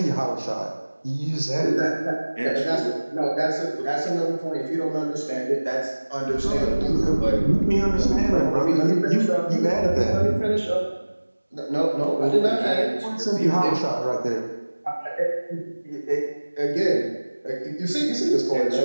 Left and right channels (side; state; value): both; inverted; correlation -1.00